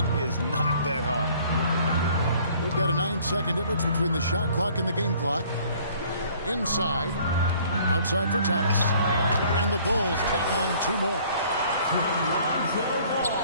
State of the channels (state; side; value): inverted; both; correlation -0.56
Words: is not that hard. We've got a 9-second difference between the shot clock and the game clock. Inside, outside for Thomas, and the Bulls tack on 2 more.